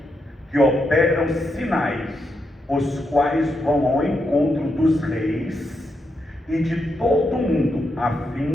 que operam sinais, os quais vão ao encontro dos reis e de todo o mundo, a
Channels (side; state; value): both; normal; correlation 0.82